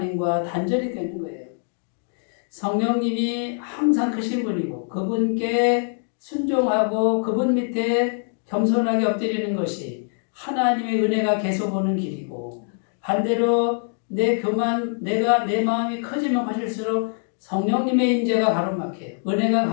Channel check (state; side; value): silent; right; 61 dB below the other